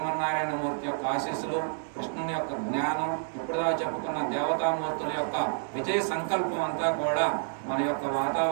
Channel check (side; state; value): left; silent; digital silence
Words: యొక్క ఆశీస్సులు, కృష్ణుని యొక్క జ్ఞానం, ఇప్పుడుదా చెప్పుకున్న దేవతామూర్తుల యొక్క విజయ సంకల్పం అంతా కూడా మన యొక్క